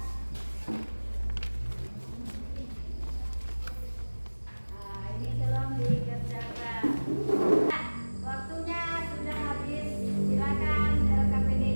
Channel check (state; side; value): inverted; both; correlation -1.00